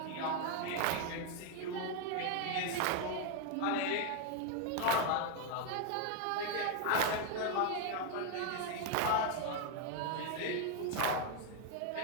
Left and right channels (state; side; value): different; both; correlation 0.01